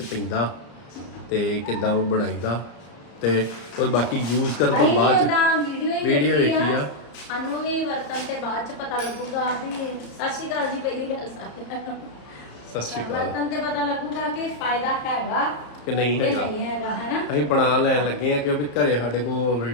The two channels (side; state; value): right; late; 34 ms